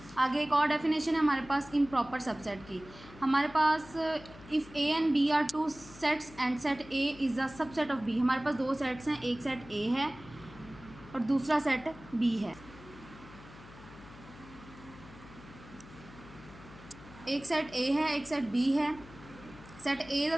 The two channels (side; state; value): left; noise; hum, 19 dB below the sound